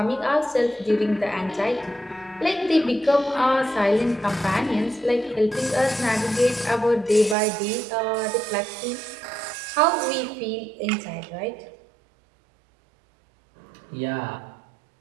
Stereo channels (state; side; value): drops out; left; at 7.4 s